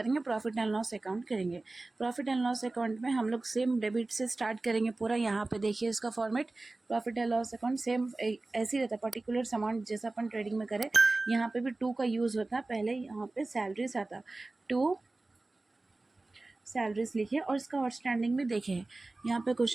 प्रॉफिट एंड लॉस अकाउंट करेंगे। प्रॉफिट एंड लॉस अकाउंट में हम लोग सेम डेबिट से स्टार्ट करेंगे पूरा। यहाँ पे देखिए इसका format, profit and loss account same ऐसे ही रहता है, पर्टिकुलर अमाउंट जैसा अपन ट्रेडिंग में करें। यहाँ पे भी 2 का यूज़ होता है। पहले यहाँ पे सैलरीज आता, 2 सैलरीज लिखे और इसका आउटस्टैंडिंग भी देखे। यहाँ पे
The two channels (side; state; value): left; quieter; 3.1 dB